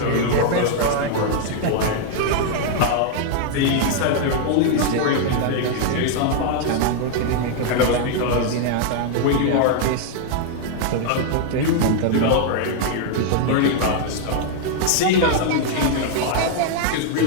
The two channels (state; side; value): different; both; correlation 0.00